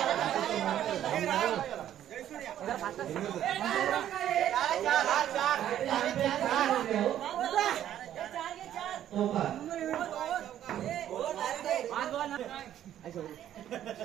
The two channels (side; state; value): left; quieter; 11.3 dB